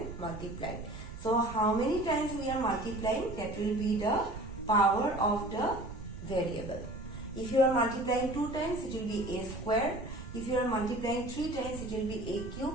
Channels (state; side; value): noise; right; rumble, 11 dB below the sound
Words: multiply. So how many times we are multiplying? That will be the power of the variable. If you are multiplying 2 times, it will be a square. If you are multiplying 3 times, it will be a